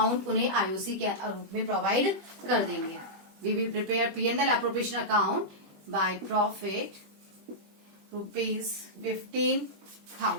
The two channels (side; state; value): left; late; 20 ms